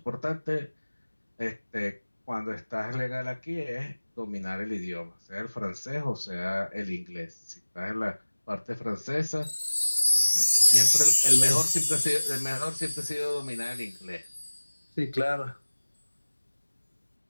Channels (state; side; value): inverted; both; correlation -1.00